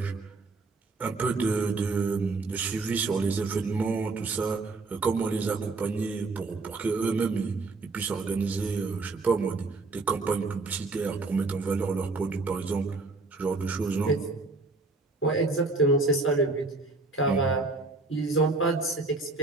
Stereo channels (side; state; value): left; quieter; 3.6 dB